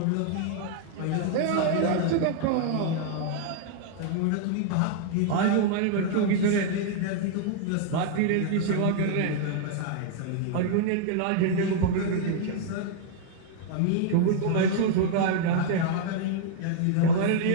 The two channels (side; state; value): both; different; correlation -0.01